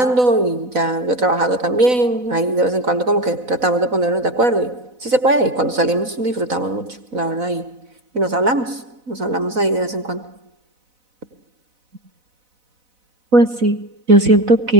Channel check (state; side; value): late; left; 4.0 ms